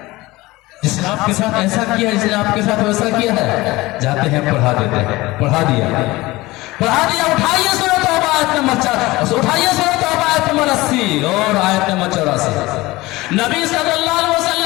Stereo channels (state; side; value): quieter; right; 20.0 dB